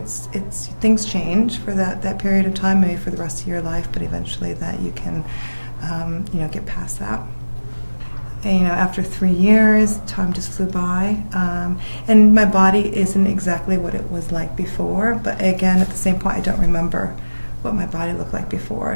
things change for that period of time, maybe for the rest of your life, but eventually that you can you know, get past that. And, you know, after 3 years, time just flew by, and my body isn't exactly what it was like before, but again, at the same point, I don't remember what my body looked like before,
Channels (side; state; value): both; inverted; correlation -1.00